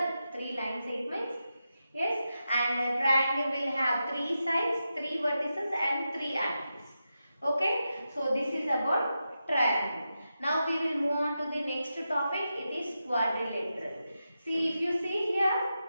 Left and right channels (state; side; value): inverted; both; correlation -0.89